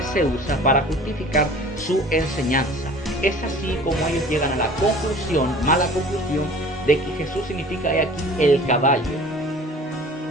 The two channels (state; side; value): normal; both; correlation 0.46